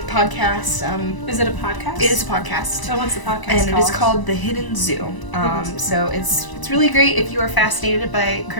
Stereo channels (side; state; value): right; late; 1.0 ms